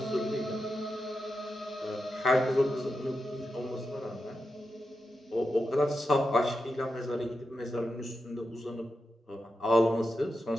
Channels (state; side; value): normal; both; correlation 0.89